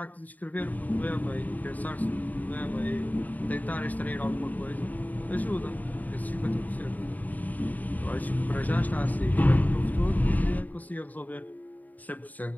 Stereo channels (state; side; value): late; right; 0.079 ms